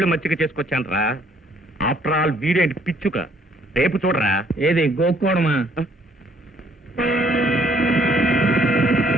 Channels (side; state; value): both; normal; correlation 0.64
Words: మచ్చిక చేసుకొచ్చాను రా. ఆఫ్టర్ ఆల్ వీడేంటి పిచ్చుక. రేపు చూడరా. ఏది గోక్కోవడమా?